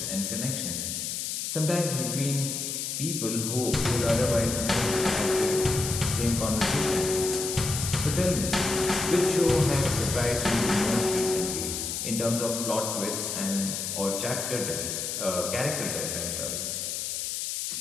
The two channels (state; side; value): noise; left; hiss, 3 dB below the sound